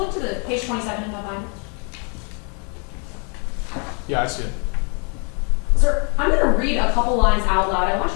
to the page 27 in that binder. Yeah, I see it. Sir, I'm going to read a couple lines out loud. I want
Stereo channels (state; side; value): quieter; right; 36.5 dB